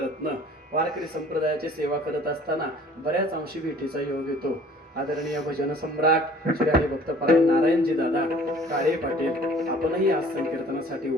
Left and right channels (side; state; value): both; normal; correlation 0.51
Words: वारकरी संप्रदायाची सेवा करत असताना बऱ्याच अंशी भेटीचा योग येतो. आदरणीय भजन सम्राट श्री हरिभक्त परायण नारायणजी दादा काळे पाटील आपणही आज संकीर्तनासाठी